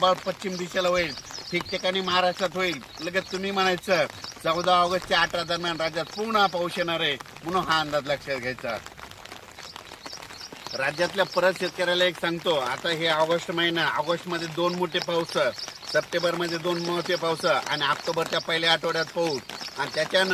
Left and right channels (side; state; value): both; identical; correlation 1.00